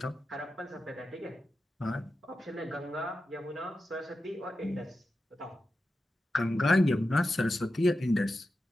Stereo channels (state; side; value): normal; both; correlation 0.91